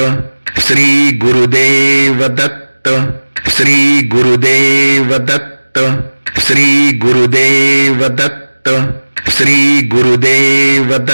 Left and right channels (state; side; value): inverted; both; correlation -1.00